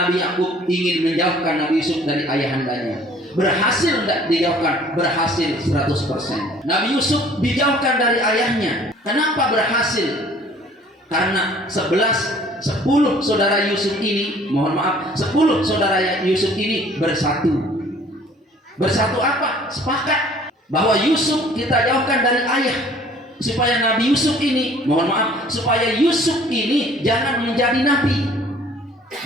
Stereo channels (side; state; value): both; normal; correlation 0.54